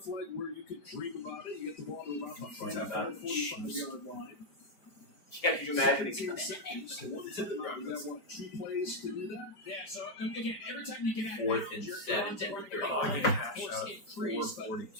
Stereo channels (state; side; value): late; right; 4.7 ms